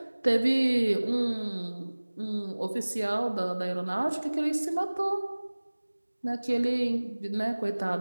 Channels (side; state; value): both; inverted; correlation -1.00